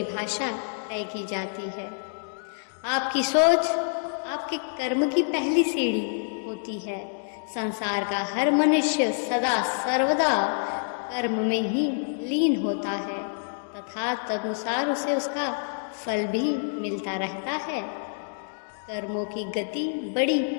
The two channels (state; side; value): silent; right; digital silence